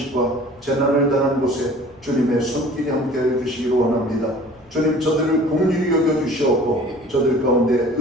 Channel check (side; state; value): left; noise; rumble, 29 dB below the sound